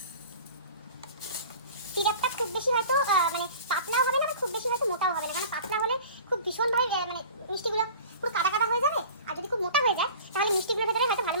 সিরাপটা খুব বেশি হয়তো মানে পাতলাও হবে না, খুব বেশি হয়তো মোটাও হবে না, কারণ পাতলা হলে খুব ভীষণভাবে মানে মিষ্টিগুলো পুরো কাদা কাদা হয়ে যাবে। আর যদি খুব মোটা হয়ে যায় তাহলে মিষ্টিগুলোর ভেতরে হয়তো ভালো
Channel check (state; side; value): inverted; both; correlation -0.41